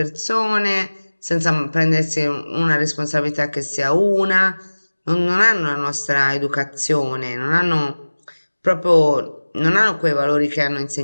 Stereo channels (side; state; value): both; inverted; correlation -1.00